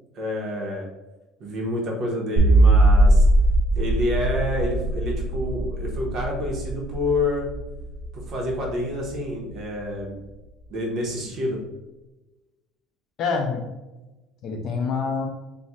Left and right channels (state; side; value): normal; both; correlation 0.65